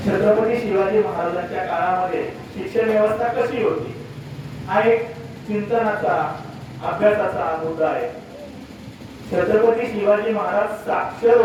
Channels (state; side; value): identical; both; correlation 1.00